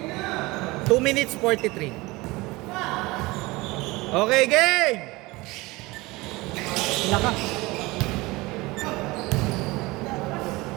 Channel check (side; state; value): left; quieter; 22.1 dB